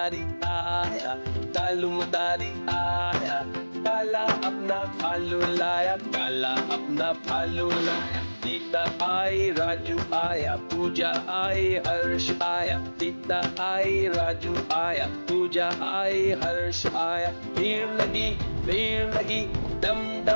आया, कालू मदारी आया, काला अपना भालू लाया, काला अपना भालू लाया। सीता आई, राजू आया, पूजा आई, हर्ष आया। सीता आई, राजू आया, पूजा आई, हर्ष आया। भीड़ लगी, डम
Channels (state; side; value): inverted; both; correlation -1.00